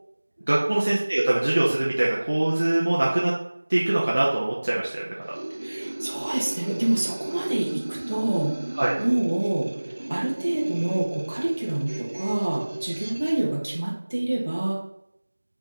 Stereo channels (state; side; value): inverted; both; correlation -1.00